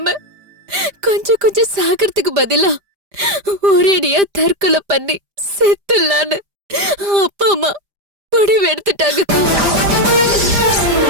கொஞ்சம் கொஞ்சம் சாகிறதுக்கு பதிலா ஒரேடியா தற்கொலை பண்ணி செத்துலான்னு அப்பா அம்மா முடிவு எடுத்துட்டாங்கக்கா.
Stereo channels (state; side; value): late; left; 5.0 ms